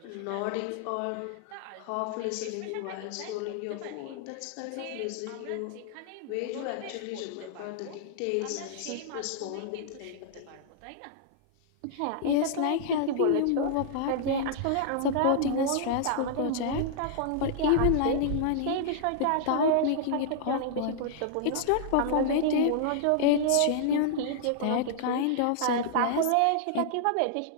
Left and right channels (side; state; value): both; different; correlation -0.01